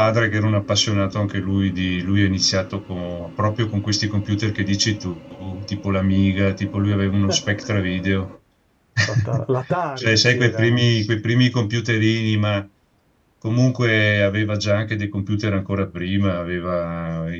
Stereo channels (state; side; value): identical; both; correlation 1.00